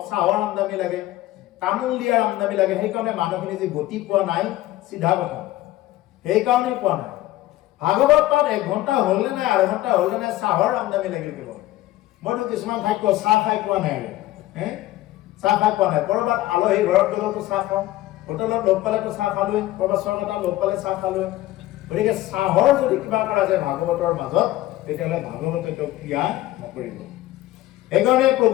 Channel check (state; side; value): quieter; right; 16.1 dB